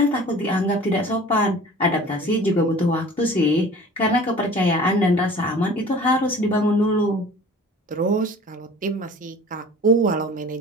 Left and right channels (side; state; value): both; normal; correlation 0.44